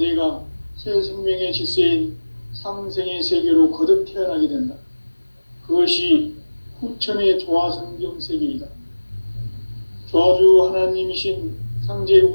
새 생명의 질서인 상생의 세계로 거듭 태어나게 된다. 그것이 후천의 조화성경 세계이다. 조화주 하나님이신 상제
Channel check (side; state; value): both; inverted; correlation -1.00